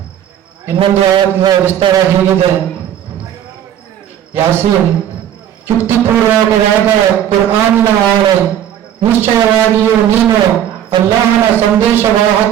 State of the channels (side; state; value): left; quieter; 10.5 dB